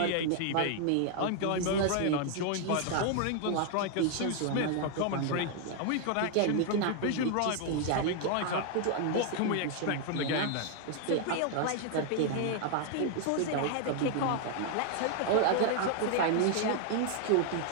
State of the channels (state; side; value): different; both; correlation 0.00